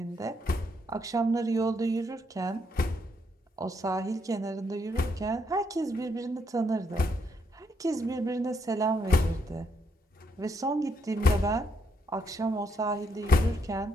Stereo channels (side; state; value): both; normal; correlation 0.76